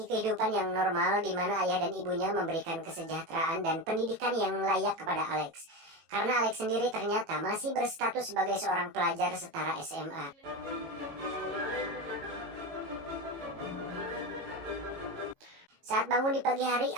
kehidupan yang normal di mana ayah dan ibunya memberikan kesejahteraan dan pendidikan yang layak kepada Alex. Karena Alex sendiri ternyata masih berstatus sebagai seorang pelajar setara SMA. Saat bangun di pagi hari,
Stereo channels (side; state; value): left; late; 18 ms